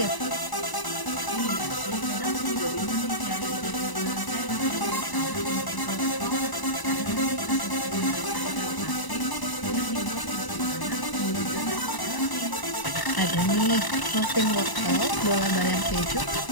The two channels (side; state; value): right; late; 1.0 ms